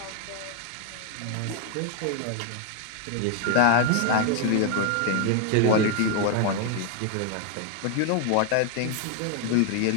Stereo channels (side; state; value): both; different; correlation 0.00